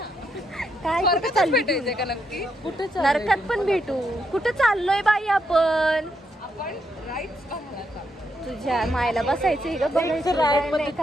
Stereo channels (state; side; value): normal; both; correlation 0.79